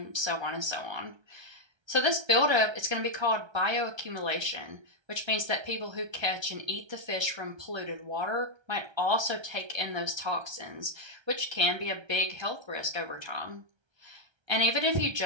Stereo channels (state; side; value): late; left; 1.3 ms